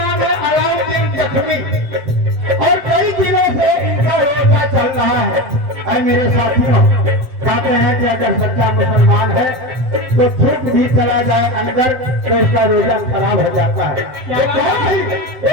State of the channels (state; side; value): late; left; 7.8 ms